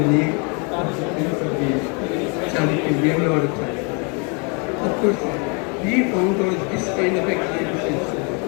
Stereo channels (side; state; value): right; quieter; 34.3 dB